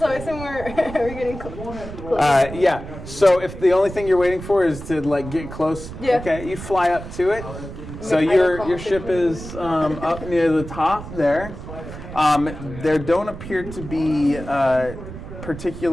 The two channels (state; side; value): noise; right; rumble, 11 dB below the sound